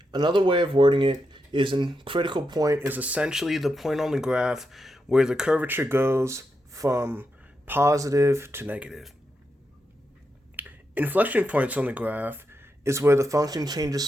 Another way of wording it is a critical point is essentially the point on the graph where the curvature goes from positive to negative. Inflection points on the graph is where the function changes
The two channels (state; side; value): normal; both; correlation 0.85